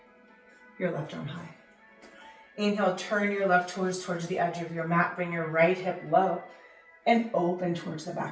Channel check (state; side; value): identical; both; correlation 1.00